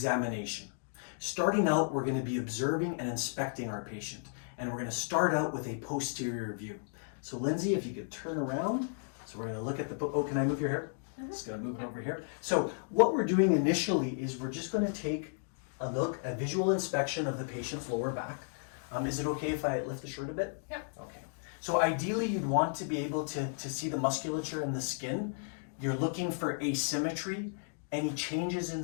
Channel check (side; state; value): right; silent; digital silence